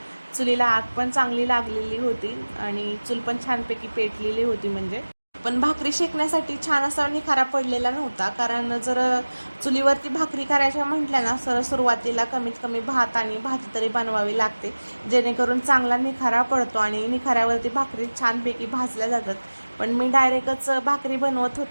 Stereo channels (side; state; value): both; inverted; correlation -1.00